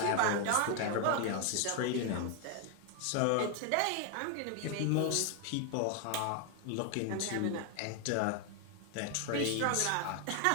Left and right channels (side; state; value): both; different; correlation 0.00